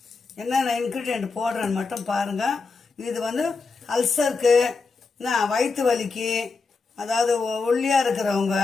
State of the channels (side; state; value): right; quieter; 4.3 dB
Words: என்னென்ன இன்க்ரீடியன்ட் போடுறேன்னு மட்டும் பாருங்கள். இது வந்து அல்சருக்கு, வயிற்று வலிக்கு, அதாவது ஒல்லியாக இருக்கிறவங்க,